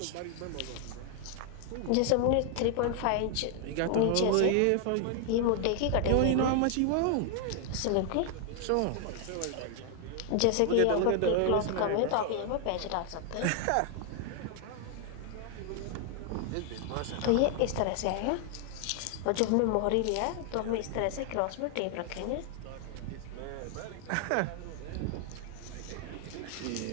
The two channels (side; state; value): both; different; correlation 0.00